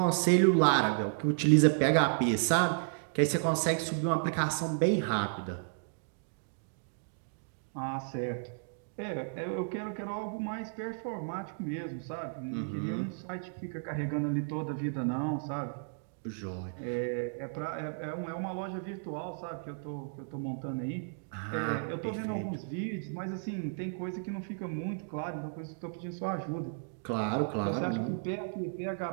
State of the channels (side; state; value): left; silent; digital silence